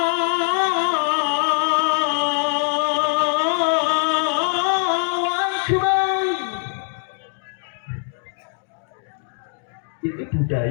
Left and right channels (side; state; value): right; silent; digital silence